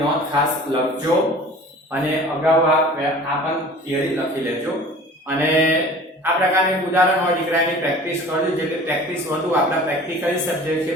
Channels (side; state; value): both; normal; correlation 0.44